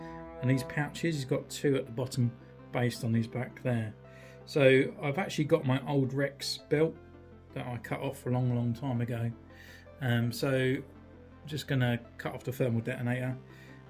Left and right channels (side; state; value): both; identical; correlation 1.00